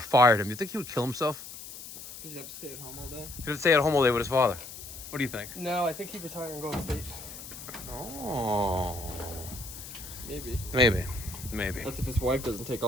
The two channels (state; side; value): noise; left; hiss, 12 dB below the sound